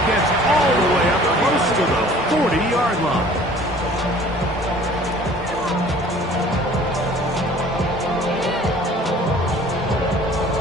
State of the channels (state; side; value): normal; both; correlation 0.50